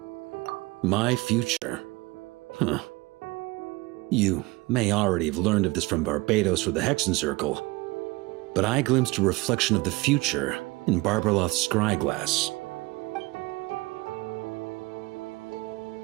My future. You may already have learned of this from Barbados or the Hexen Circle, but I glimpsed a reflection of the future in Barbarloth's scryglass.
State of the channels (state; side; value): quieter; left; 22.9 dB